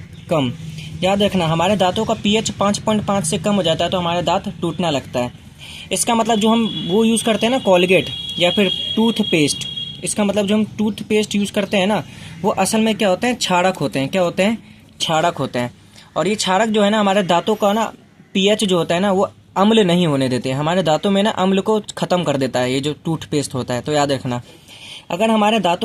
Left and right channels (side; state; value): both; identical; correlation 1.00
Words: कम। याद रखना, हमारे दांतों का पीएच 5.5 से कम हो जाता है तो हमारे दांत टूटना लगता है। इसका मतलब जो हम वो यूज़ करते हैं ना, कोलगेट या फिर टूथपेस्ट, इसका मतलब जो हम टूथपेस्ट यूज़ करते हैं ना, वो असल में क्या होते हैं, क्षारक होते हैं। क्या होते हैं? क्षारक होते हैं। और ये क्षारक जो है ना हमारे दांतों का ना पीएच जो होता है ना वो अम्ल नहीं होने देते, हमारे दांतों में ना अम्ल को ख़त्म कर देता है ये जो टूथपेस्ट होता है। तो याद रखना, अगर हमारे